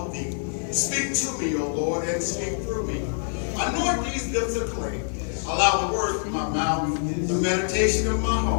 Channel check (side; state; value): right; silent; 61 dB below the other